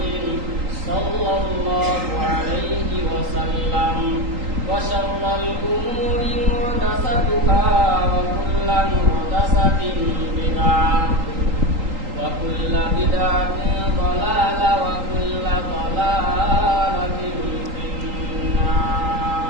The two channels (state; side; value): late; left; 3.8 ms